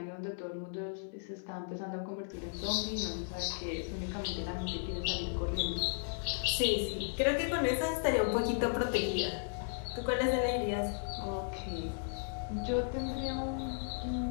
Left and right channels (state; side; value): silent; right; digital silence